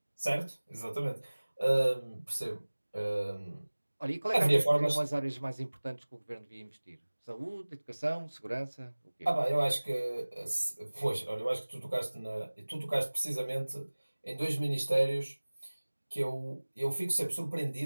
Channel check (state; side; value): inverted; both; correlation -1.00